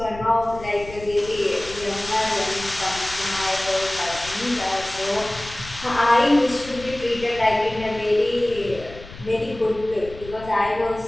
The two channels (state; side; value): noise; left; rumble, 16 dB below the sound